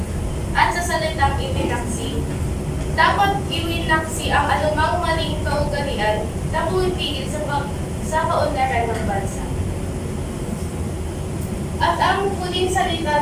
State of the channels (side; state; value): both; identical; correlation 1.00